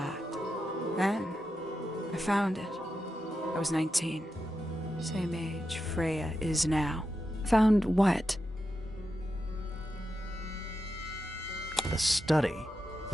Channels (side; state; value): both; normal; correlation 0.88